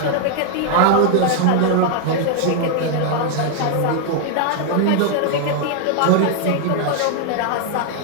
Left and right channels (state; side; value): different; both; correlation 0.00